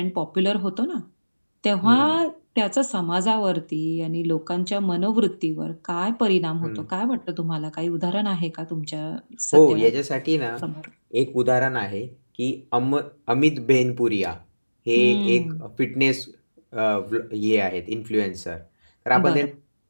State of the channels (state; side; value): inverted; both; correlation -1.00